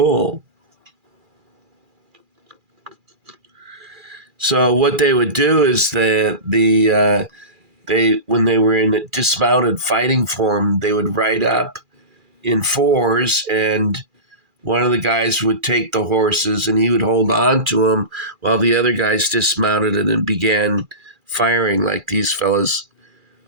So what they would do is they when they were in dismounted fighting form, they would ride up in fours, and one of the guys would take the horses and he would hold on to them while the other guys dismounted and began firing like these fellas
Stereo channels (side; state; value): left; late; 2.4 ms